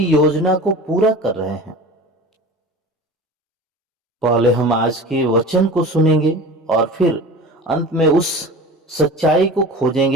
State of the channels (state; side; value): normal; both; correlation 0.36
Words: योजना को पूरा कर रहे हैं? पहले हम आज के वचन को सुनेंगे और फिर अंत में उस सच्चाई को